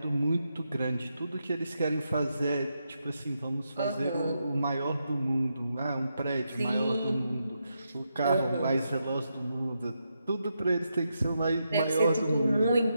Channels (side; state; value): both; inverted; correlation -0.84